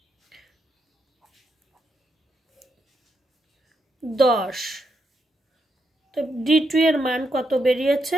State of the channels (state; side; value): normal; both; correlation 0.81